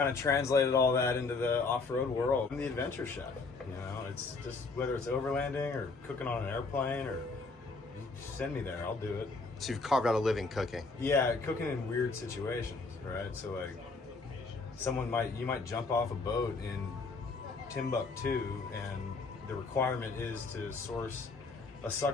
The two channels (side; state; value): right; quieter; 4.0 dB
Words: of translated all that into the off-road world. I'm the adventure chef. You know, it's just whether it's overlanding or cooking on an airplane, or you send me there, I'll do it. So you've carved out a living cooking. Yeah, cooking in weird situations, right? So like, you might jump off a boat in Timbuktu, and the requirement is to source a